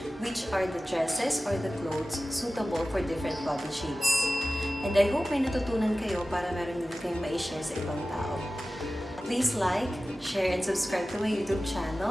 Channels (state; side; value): normal; both; correlation 0.96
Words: which are the dresses or the clothes suitable for different body shapes. And I hope may natutunan kayo para meron din kayong ma-share sa ibang tao. Please like, share, and subscribe to my YouTube